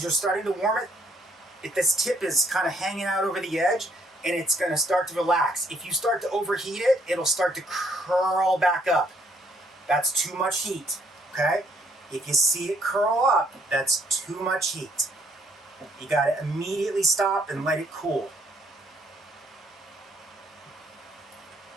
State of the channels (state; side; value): normal; both; correlation 0.68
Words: you're starting to warm it, if this tip is kind of hanging out over the edge, and it's going to start to relax. If you start to overheat it, it'll start to curl back up. That's too much heat, okay? If you see it curl up, that's too much heat. You got to immediately stop and let it cool.